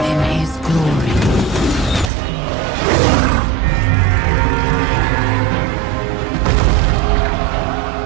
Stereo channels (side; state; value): left; drops out; at 2.1 s